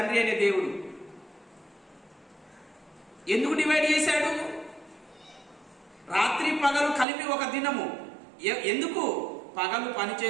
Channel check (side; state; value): left; drops out; at 7.1 s